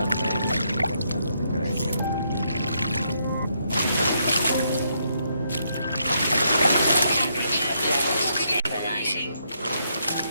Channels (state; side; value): inverted; both; correlation -0.76